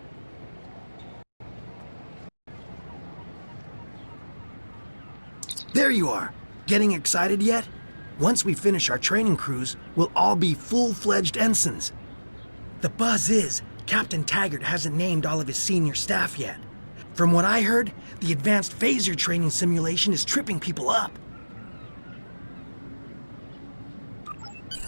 There you are. Getting excited yet? Once we finish our training cruise, we'll all be full-fledged ensigns. The buzz is, Captain Taggart hasn't named all of his senior staff yet. From what I heard, the advanced phaser training simulation is tripping people up.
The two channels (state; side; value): inverted; both; correlation -1.00